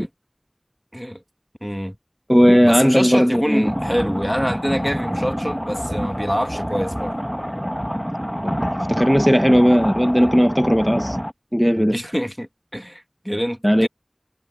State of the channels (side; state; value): both; identical; correlation 1.00